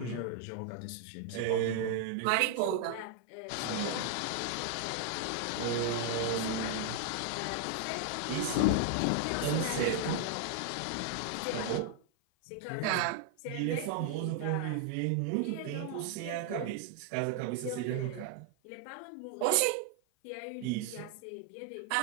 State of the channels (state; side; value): different; both; correlation 0.00